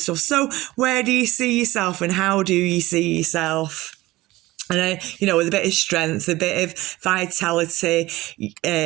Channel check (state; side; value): quieter; left; 18.4 dB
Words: So where do you see yourself and how do you see yourself? And, with a bit of strength, a bit of vitality,